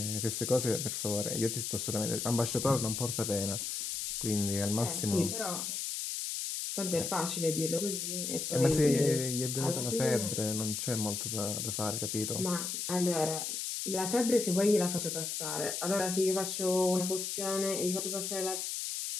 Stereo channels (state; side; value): noise; left; hiss, 3 dB below the sound